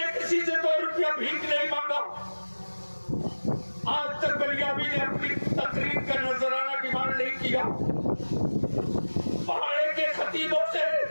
किसी से 2 रुपया भीख नहीं मांगा। आज तक बलियाबी ने अपनी तकरीर का नजराना डिमांड नहीं किया। पहाड़े के खतीबों से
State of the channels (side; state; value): both; inverted; correlation -1.00